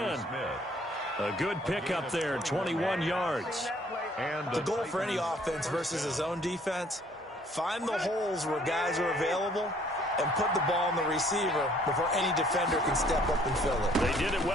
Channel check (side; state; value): both; normal; correlation 0.60